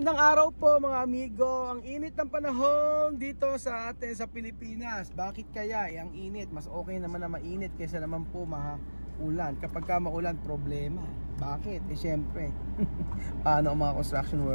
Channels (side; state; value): both; inverted; correlation -1.00